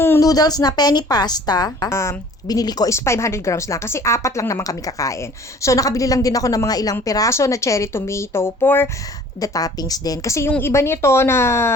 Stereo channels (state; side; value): normal; both; correlation 0.51